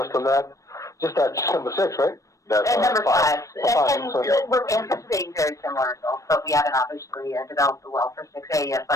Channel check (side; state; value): right; late; 0.16 ms